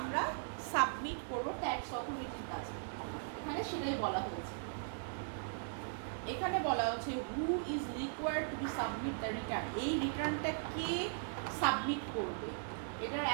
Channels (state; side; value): silent; left; digital silence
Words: সাবমিট করবো ট্যাক্স অথরিটির কাছে, এখানে সেটাই বলা হয়েছে। এখানে বলা হচ্ছে who is required to B submit the return. এই রিটার্নটা কে সাবমিট করবে, এটার